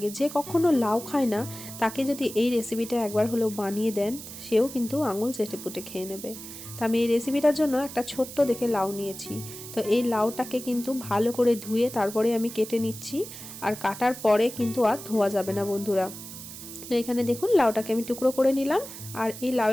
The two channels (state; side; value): noise; right; hiss, 12 dB below the sound